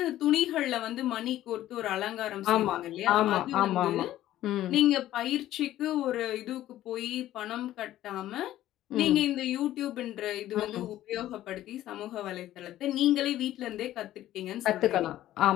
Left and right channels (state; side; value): quieter; right; 13.7 dB